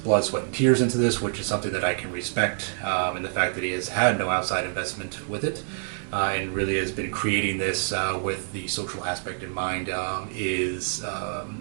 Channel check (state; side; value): silent; left; 61 dB below the other